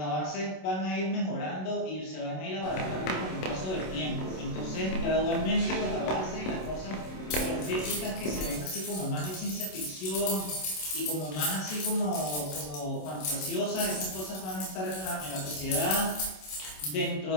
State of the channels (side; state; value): right; late; 27 ms